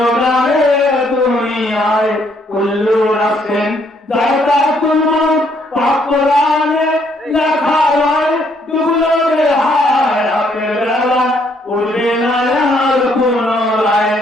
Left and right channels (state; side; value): normal; both; correlation 0.69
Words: না রে দুনিয়ায়। কুল্লু রাসেন দায়তা তুমুর পাক কোরআনে লেখা হয়, ডুবলো রে হায় রাতের বেলা উঠবে না আর পুনরায়।